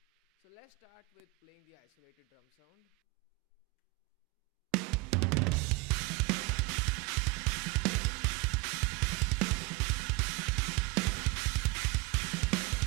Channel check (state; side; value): quieter; left; 24.7 dB